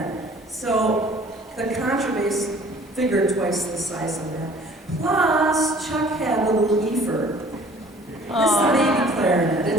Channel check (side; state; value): both; normal; correlation 0.52